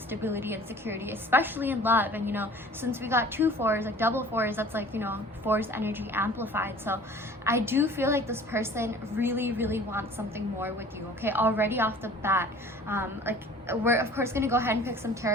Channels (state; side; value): normal; both; correlation 0.47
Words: stability and security, especially in love. And you know, since we got 2 4s, like double 4s, that's like, you know, 4's energy amplified. So I do feel like this person really wants something more with you. Okay, already off the bat, like, we're of course going to go ahead and pick some